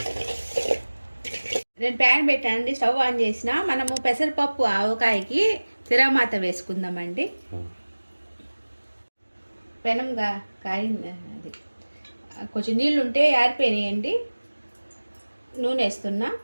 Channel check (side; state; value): both; inverted; correlation -1.00